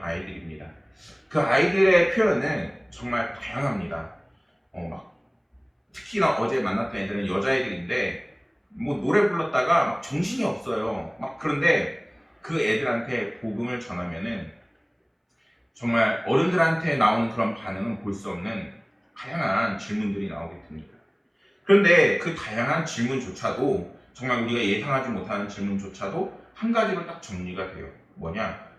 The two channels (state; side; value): identical; both; correlation 1.00